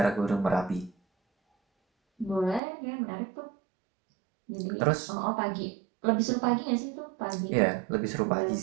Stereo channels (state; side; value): drops out; left; at 2.6 s